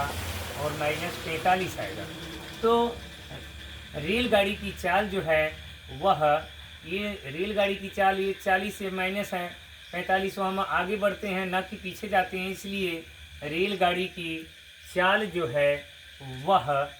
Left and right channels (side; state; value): both; identical; correlation 1.00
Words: और माइनस 45 आएगा। तो रेलगाड़ी की चाल जो है वह, ये रेलगाड़ी की चाल ये 40 से माइनस है 45, तो हम आगे बढ़ते हैं न कि पीछे जाते हैं, इसलिए रेलगाड़ी की चाल जो है वह